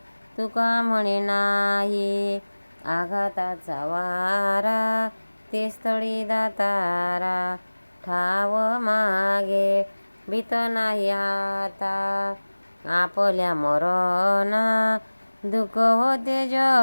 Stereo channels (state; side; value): inverted; both; correlation -1.00